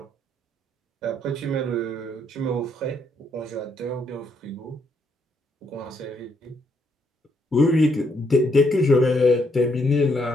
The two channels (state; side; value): normal; both; correlation 0.74